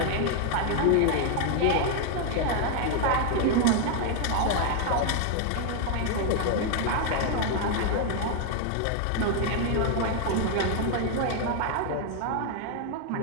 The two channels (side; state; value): both; different; correlation 0.00